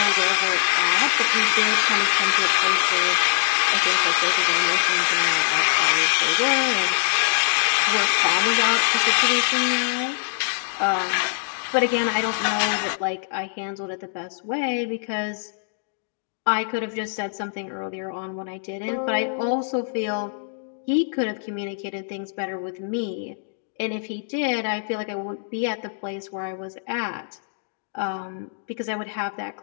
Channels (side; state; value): right; silent; digital silence